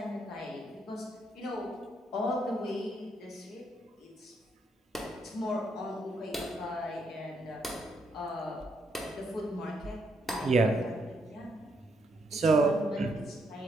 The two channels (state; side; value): normal; both; correlation 0.76